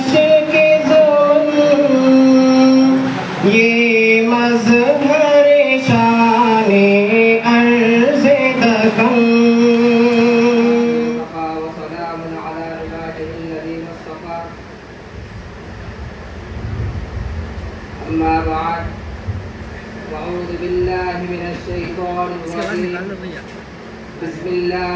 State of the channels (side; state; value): both; identical; correlation 1.00